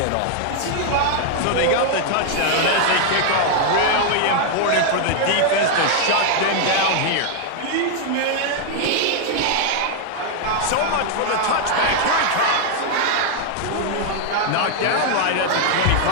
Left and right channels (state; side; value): different; both; correlation 0.00